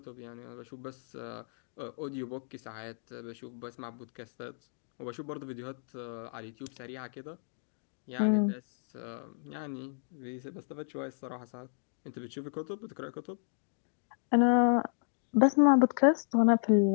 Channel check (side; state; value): right; silent; digital silence